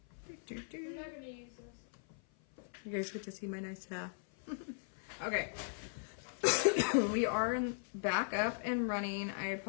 I'm not gonna use this. You guys get to see my nice hair. Okay. We are back up and running. I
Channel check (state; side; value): silent; right; 52 dB below the other